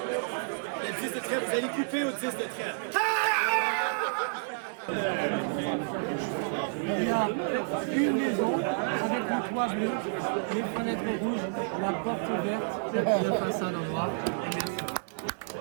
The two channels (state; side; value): silent; left; digital silence